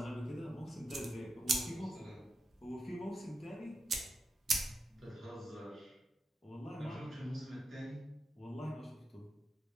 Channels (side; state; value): both; normal; correlation 0.87